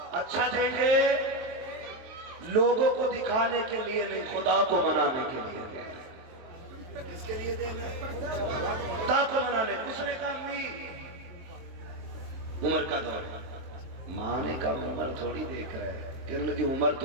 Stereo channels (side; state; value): left; late; 23 ms